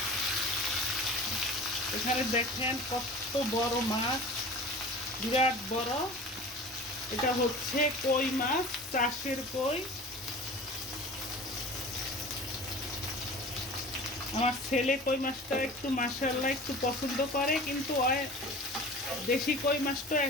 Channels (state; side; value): normal; both; correlation 0.39